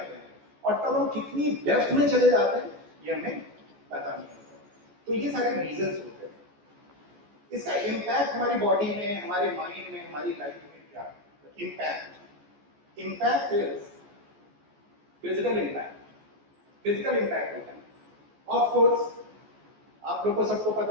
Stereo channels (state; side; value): late; left; 14 ms